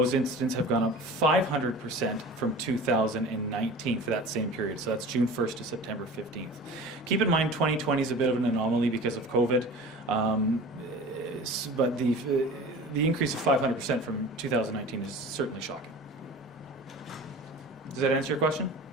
incidents have gone up 500% from 2019 for that same period. So that's June 1st to September 15th. Keep in mind 2020 is a bit of an anomaly because of COVID, but the increase of 500% from 2019 is certainly shocking. Does that answer your question?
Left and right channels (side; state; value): both; normal; correlation 0.38